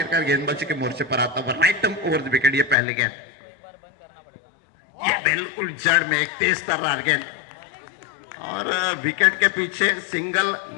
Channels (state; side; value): drops out; right; at 2.8 s